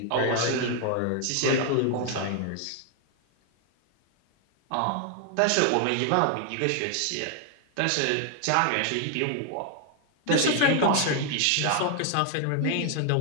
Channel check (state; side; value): different; both; correlation 0.00